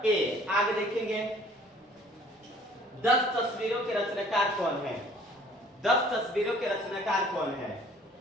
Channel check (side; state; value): both; normal; correlation 0.55